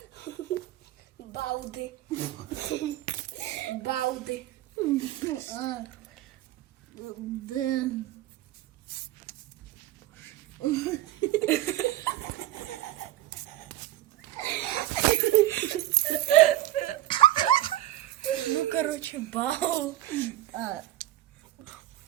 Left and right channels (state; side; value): quieter; left; 14.6 dB